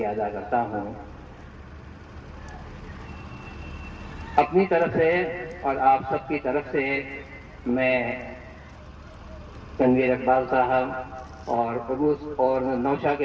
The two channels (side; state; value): both; identical; correlation 1.00